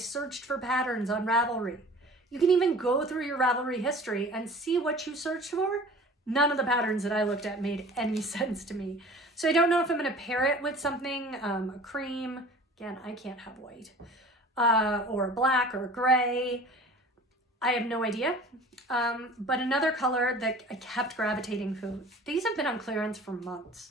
for patterns on Ravelry. You can even go through your Ravelry history and see what you searched for. None of the patterns that I looked at made any sense to me. So I don't know if I'm going to pair it with something, a cream. Again, I can't have white. Or a black or a gray. I have no idea. But another color that I kept gravitating to. These have been on clearance for months.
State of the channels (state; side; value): normal; both; correlation 0.44